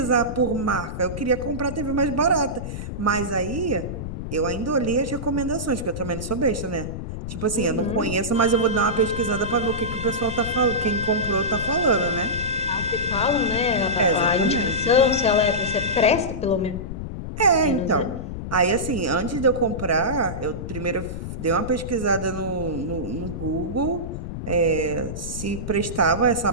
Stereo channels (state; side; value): noise; left; rumble, 7 dB below the sound